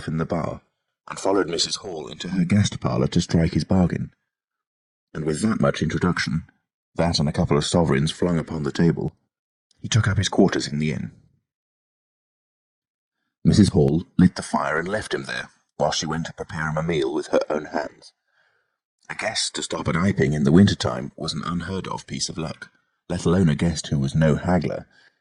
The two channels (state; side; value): identical; both; correlation 1.00